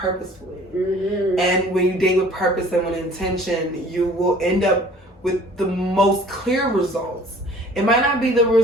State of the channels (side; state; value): both; normal; correlation 0.51